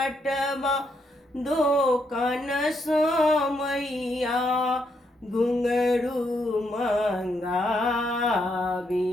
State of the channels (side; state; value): both; normal; correlation 0.77